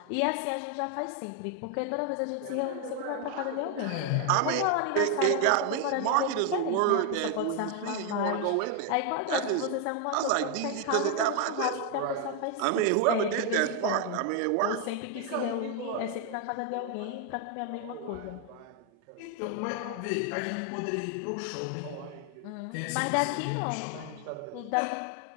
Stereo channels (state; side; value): different; both; correlation 0.01